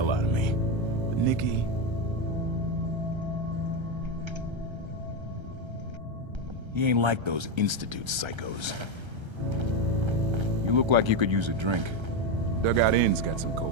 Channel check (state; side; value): late; left; 1.3 ms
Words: out of me. But Nikki... he ain't like those Institute psychos. You look like you could use a drink. Dugout Inn's got some